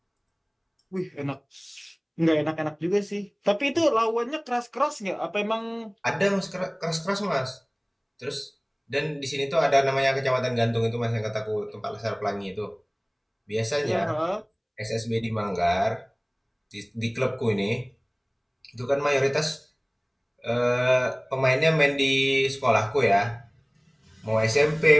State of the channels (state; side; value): identical; both; correlation 1.00